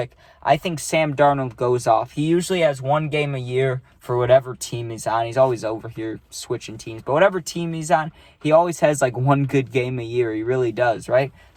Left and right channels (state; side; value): identical; both; correlation 1.00